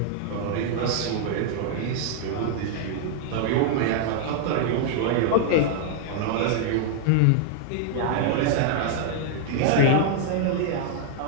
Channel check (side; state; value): both; different; correlation 0.00